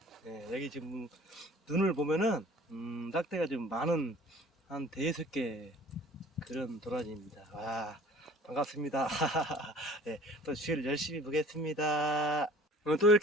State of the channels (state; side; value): normal; both; correlation 0.48